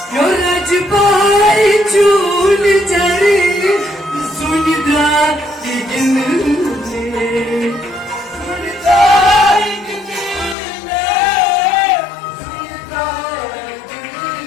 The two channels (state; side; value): drops out; right; at 10.6 s